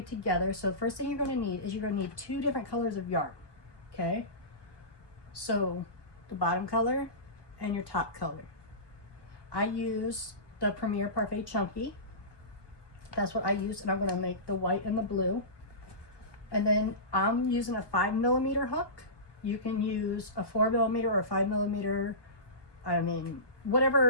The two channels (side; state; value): right; late; 1.2 ms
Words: together. So the first thing you're going to need is you're going to need 2 different colors of yarn. Okay? So the bottom color and your top color. I use the Premier Parfait Chunky. That's what I use, and I'm going to make the white and the blue. And then I'm using a 5mm hook. You can use a 4mm or a 5mm. I mean,